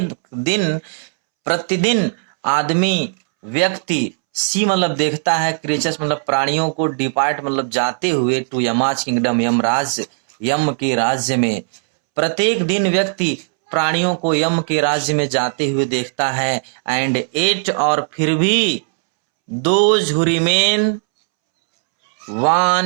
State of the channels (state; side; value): silent; left; 68 dB below the other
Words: प्रतिदिन आदमी, व्यक्ति, सी मतलब देखता है, क्रिएचर्स मतलब प्राणियों को, डिपार्ट मतलब जाते हुए, टू यमाज किंगडम, यम के राज्य में। प्रत्येक दिन व्यक्ति प्राणियों को यम के राज्य में जाते हुए देखता है। एंड एट, और फिर भी, those who remain